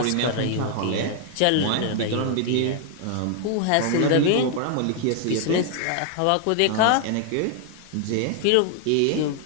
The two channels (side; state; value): both; different; correlation 0.00